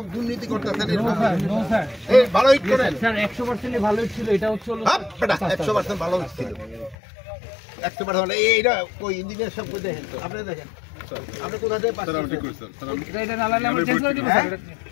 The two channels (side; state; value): right; drops out; at 7.0 s